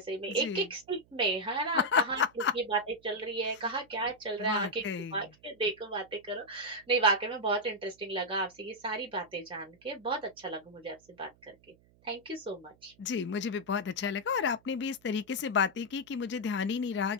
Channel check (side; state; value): right; noise; hum, 30 dB below the sound